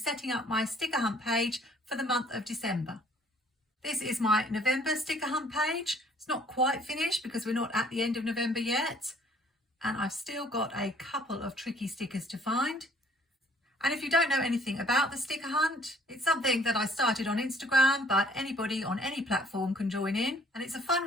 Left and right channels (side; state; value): both; normal; correlation 0.60